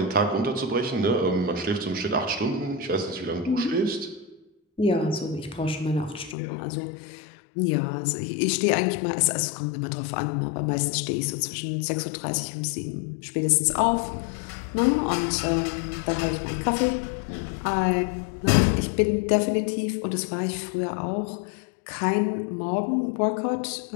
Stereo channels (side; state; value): right; drops out; at 6.4 s